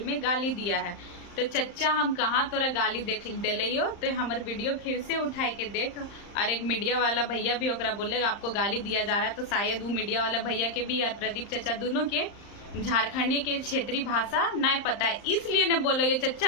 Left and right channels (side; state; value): right; late; 35 ms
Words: में गाली दिया है। तो चचा हम कहाँ तोरा गाली देख दिलियो, तो हमर वीडियो फिर से उठाए के देख। और एक मीडिया वाला भैया भी ओकरा बोलेगा आपको गाली दिया जा रहा है, तो शायद वो मीडिया वाला भैया के भी और प्रदीप चचा दोनों के झारखंडी के क्षेत्रीय भाषा नहीं पता है, इसलिए ने बोलो ये